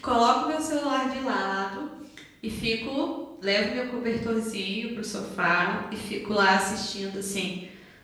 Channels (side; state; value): both; identical; correlation 1.00